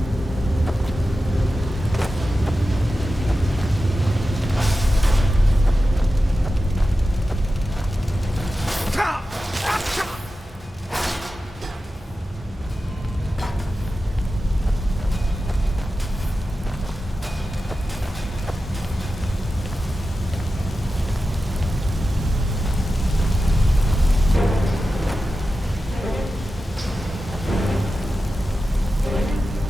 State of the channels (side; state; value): both; normal; correlation 0.93